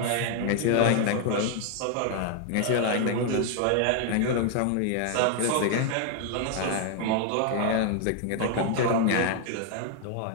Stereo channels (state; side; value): different; both; correlation 0.00